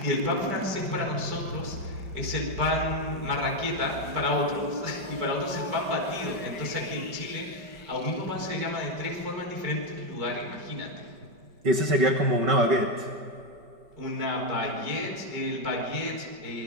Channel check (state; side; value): late; left; 5.2 ms